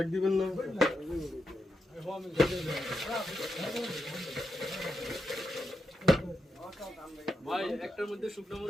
দিবেন না ভাই একটার মধ্যে শুকনো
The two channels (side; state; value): both; normal; correlation 0.85